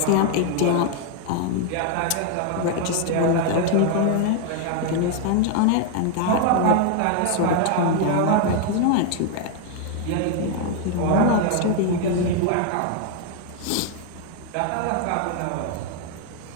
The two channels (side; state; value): both; different; correlation 0.00